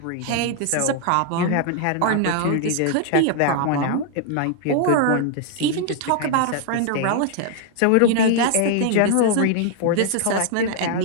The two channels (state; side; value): different; both; correlation 0.00